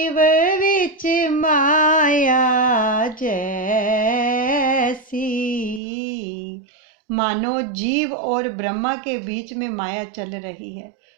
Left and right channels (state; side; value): drops out; left; at 5.8 s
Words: विच माया जैसी, सी। मानो जीव और ब्रह्मा के बीच में माया चल रही है।